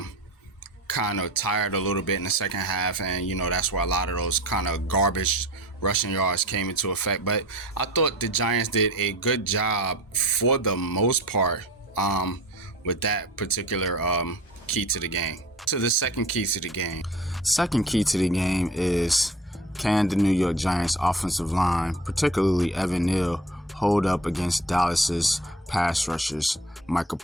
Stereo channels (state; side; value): normal; both; correlation 0.40